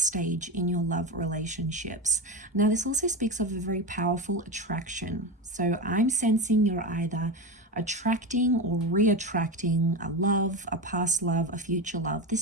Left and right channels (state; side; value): normal; both; correlation 0.19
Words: in your love relationships. Now, this also speaks of a very powerful attraction. So I'm sensing you're either attracting or re-attracting a love, a past love, a future love.